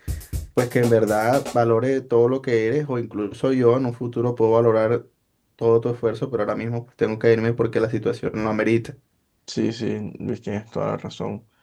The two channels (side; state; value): both; identical; correlation 1.00